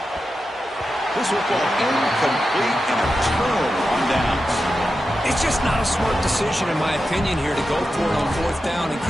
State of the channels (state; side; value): normal; both; correlation 0.90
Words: This football incomplete and a turnover on downs. It's just not a smart decision, in my opinion, here to go for it on fourth down. And,